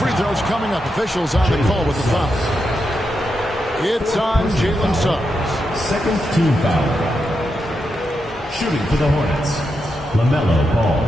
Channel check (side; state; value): both; normal; correlation 0.85